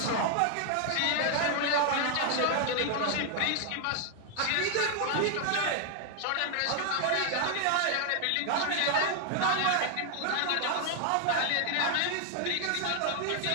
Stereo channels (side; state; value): both; different; correlation 0.00